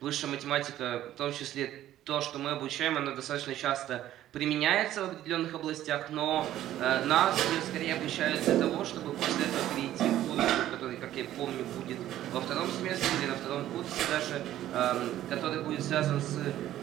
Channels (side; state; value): left; quieter; 13.0 dB